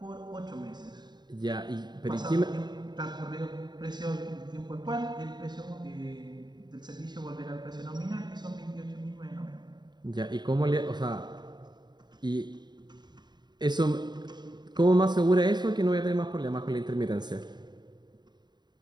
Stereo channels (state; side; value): late; left; 0.21 ms